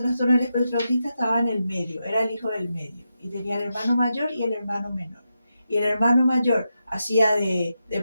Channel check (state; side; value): inverted; both; correlation -0.87